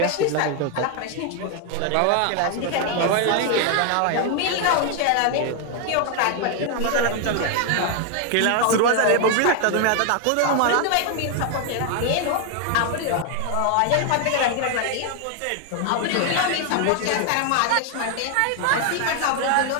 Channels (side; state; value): both; different; correlation 0.00